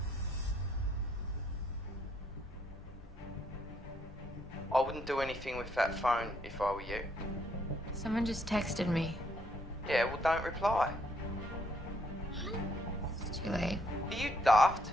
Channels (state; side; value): normal; both; correlation 0.71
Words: I wouldn't do anything with that phone if I were you. Someone just texted me. Yeah, well, don't reply. It's too late. Are you daft?